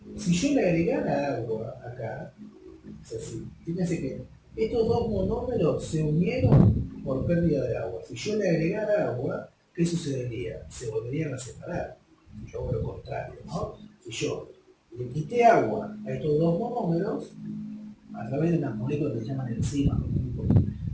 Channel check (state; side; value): identical; both; correlation 1.00